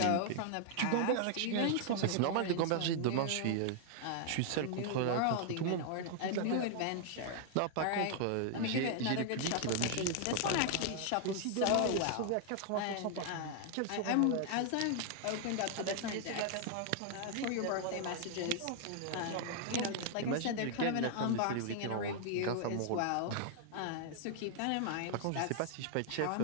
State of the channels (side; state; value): both; different; correlation 0.00